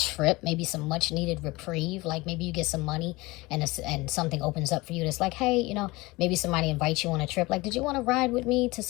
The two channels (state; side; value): quieter; right; 21.9 dB